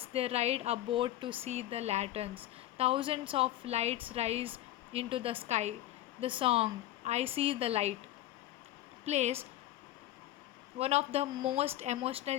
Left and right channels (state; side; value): quieter; right; 14.2 dB